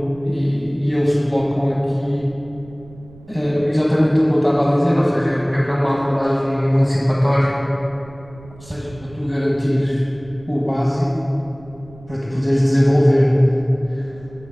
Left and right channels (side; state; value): right; noise; rumble, 22 dB below the sound